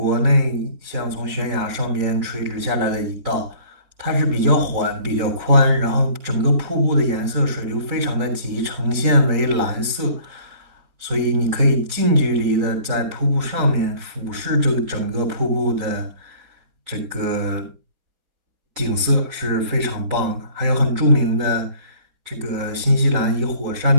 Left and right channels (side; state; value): left; late; 4.0 ms